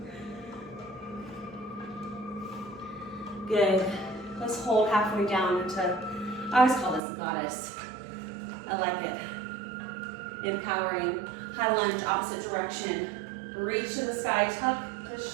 Good. Let's hold halfway down into, I always call this goddess. I like it. Empowering. High lunge, opposite direction. Reach to the sky, tuck the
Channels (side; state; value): left; drops out; at 7.0 s